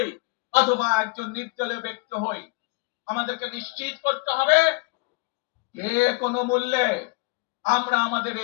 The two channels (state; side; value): quieter; right; 28.0 dB